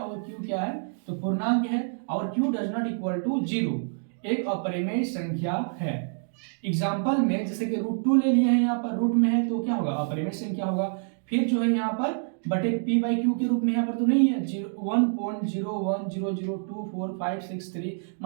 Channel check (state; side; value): silent; left; digital silence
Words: q क्या है, तो पूर्णांक है और q does not equal to 0, एक अपरिमेय संख्या है। एग्जाम्पल में जैसे कि √2 ले लिए हैं, यहाँ पर रूट में है तो क्या होगा, अपरिमेय संख्या होगा। फिर जो है यहाँ पर बटे p/q के रूप में यहाँ पर तो नहीं है, 1.0100245663।